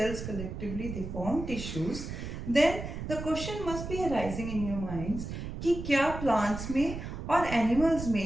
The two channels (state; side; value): noise; right; rumble, 7 dB below the sound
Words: collectively they form tissues, then the question must be arising in your minds कि क्या plants में और animals